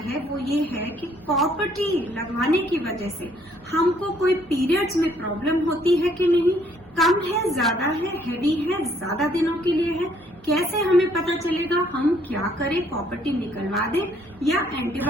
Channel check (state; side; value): normal; both; correlation 0.65